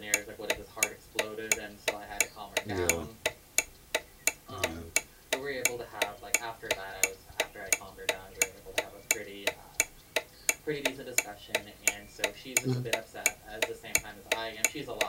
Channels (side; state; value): both; identical; correlation 1.00